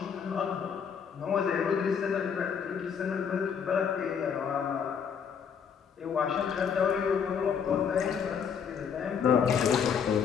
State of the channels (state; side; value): quieter; right; 7.1 dB